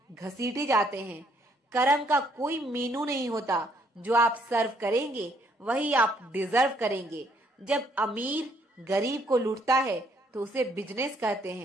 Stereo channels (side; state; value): both; normal; correlation 0.68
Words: घसीटे जाते हैं। कर्म का कोई मेनू नहीं होता, जो आप सर्व करेंगे वही आप डिजर्व करेंगे। जब अमीर गरीब को लूटता है तो उसे बिजनेस कहते